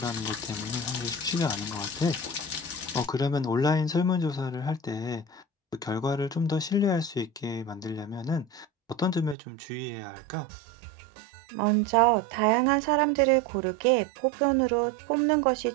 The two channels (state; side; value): drops out; left; at 9.3 s